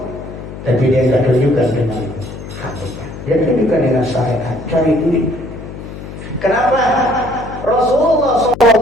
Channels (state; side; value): noise; left; hum, 12 dB below the sound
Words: Tapi dia tidak tunjukkan dengan hakikat. Dia tunjukkan dengan syariat, cari duit. Kenapa? Rasulullah